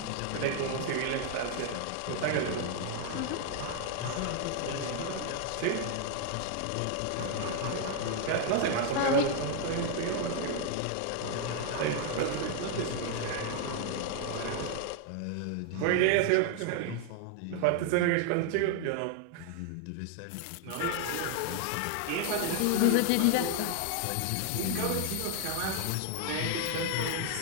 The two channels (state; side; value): different; both; correlation 0.00